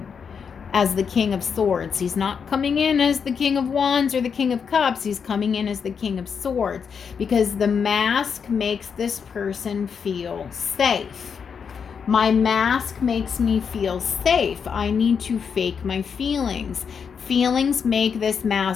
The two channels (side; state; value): right; quieter; 6.5 dB